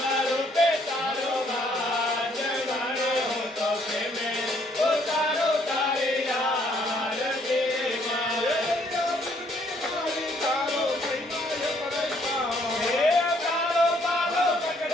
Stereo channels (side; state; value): both; normal; correlation 0.67